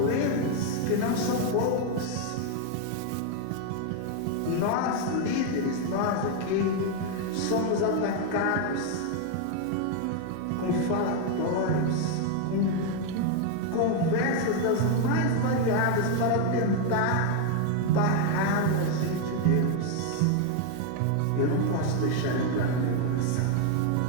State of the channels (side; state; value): both; different; correlation 0.01